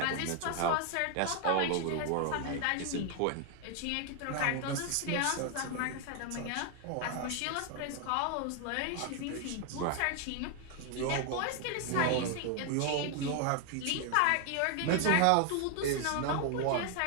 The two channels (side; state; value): both; different; correlation 0.00